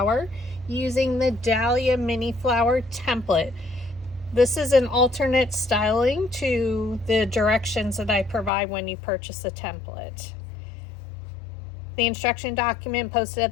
using the Dahlia Mini Flower template. This is an alternate styling to the directions that I provide when you purchase a template. The instruction document posted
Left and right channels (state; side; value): drops out; right; at 8.5 s